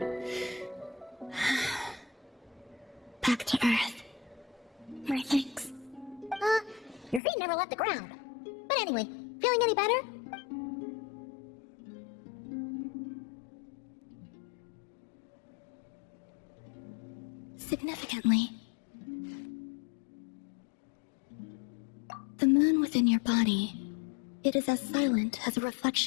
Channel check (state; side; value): drops out; right; at 7.2 s